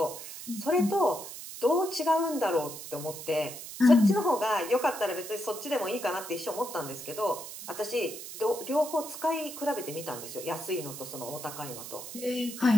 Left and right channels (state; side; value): noise; right; hiss, 11 dB below the sound